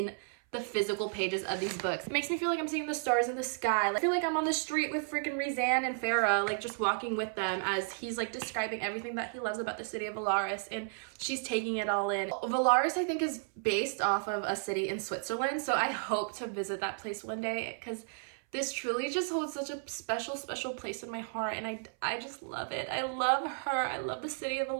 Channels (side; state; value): left; silent; 56 dB below the other